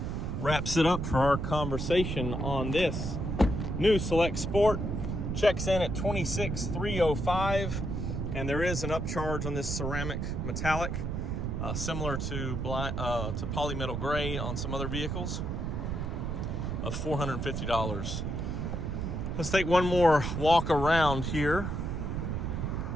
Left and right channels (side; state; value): right; noise; rumble, 2 dB below the sound